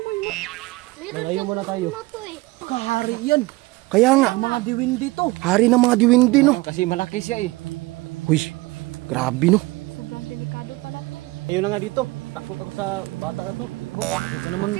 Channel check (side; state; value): left; quieter; 21.7 dB